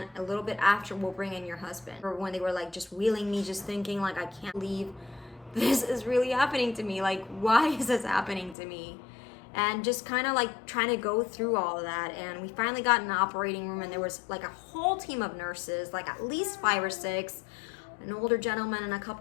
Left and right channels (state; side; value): drops out; right; at 8.6 s